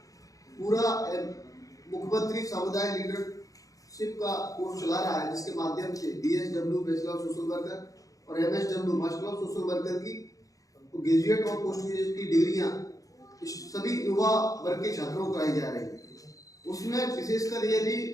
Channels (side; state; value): right; late; 0.17 ms